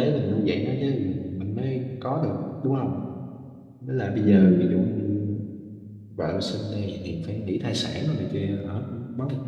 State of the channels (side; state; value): both; identical; correlation 1.00